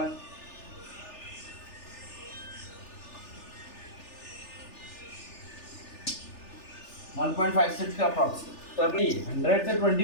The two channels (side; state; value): right; late; 3.4 ms